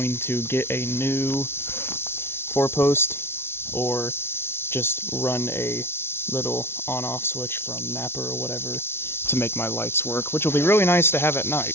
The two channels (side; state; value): right; late; 0.12 ms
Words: to get a new 4-post or just run a little on-off switch from Napa or whatever to make my lights work, which will be really nice to have at